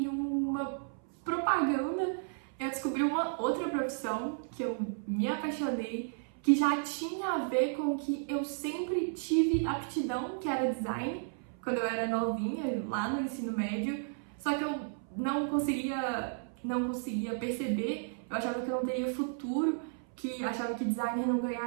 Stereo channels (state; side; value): silent; left; 56 dB below the other